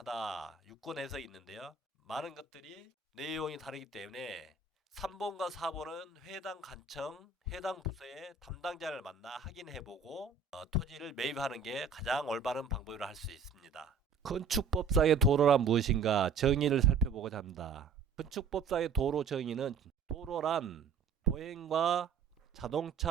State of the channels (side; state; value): left; quieter; 5.4 dB